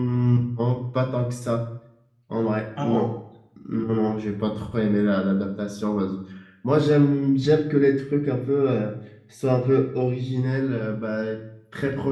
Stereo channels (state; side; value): identical; both; correlation 1.00